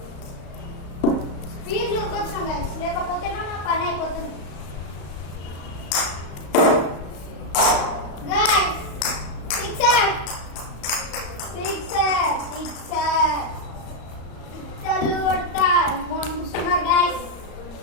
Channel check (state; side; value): late; right; 35 ms